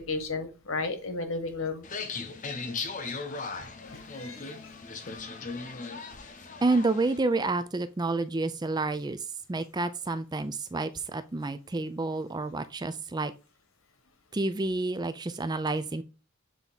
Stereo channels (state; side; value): normal; both; correlation 0.52